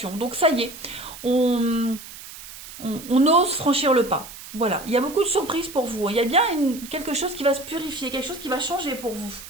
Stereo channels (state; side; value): noise; right; hiss, 15 dB below the sound